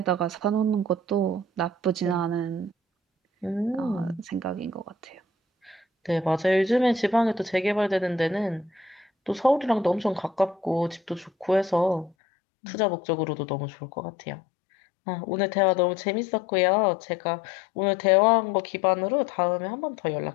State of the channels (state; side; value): drops out; right; at 12.1 s